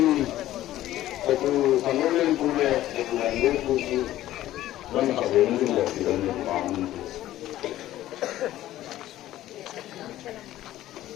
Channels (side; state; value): right; quieter; 14.1 dB